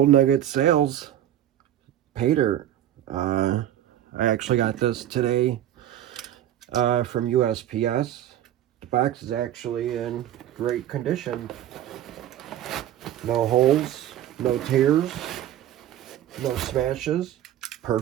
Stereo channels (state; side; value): quieter; left; 11.8 dB